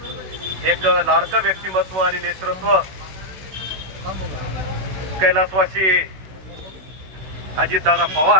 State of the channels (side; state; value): left; late; 16 ms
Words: एक लाडकं व्यक्तिमत्व आणि नेतृत्व कैलासवासी अजितदादा